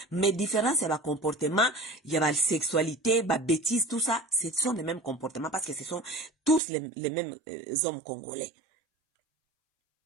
Mais différence ya ba comportement, ya ba sexualité, ba bêtise, tout ça, ce sont les mêmes comportements parce que ce sont tous les mêmes hommes congolais.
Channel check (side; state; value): left; drops out; at 6.6 s